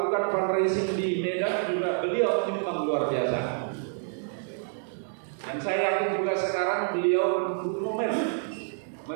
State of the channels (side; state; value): left; silent; digital silence